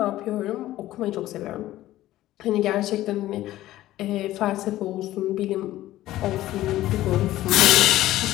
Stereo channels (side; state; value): right; quieter; 15.1 dB